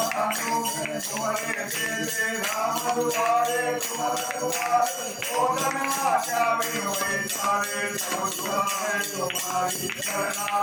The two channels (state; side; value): identical; both; correlation 1.00